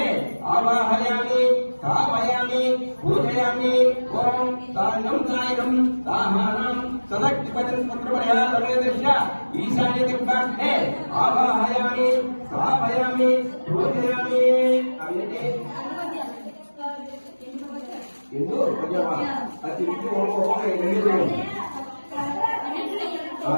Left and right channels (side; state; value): both; inverted; correlation -1.00